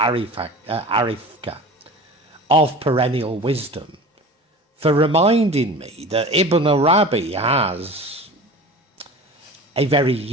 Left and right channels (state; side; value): normal; both; correlation 0.37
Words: of Perennial Wisdom for reminding me that Ibn Arabi has a very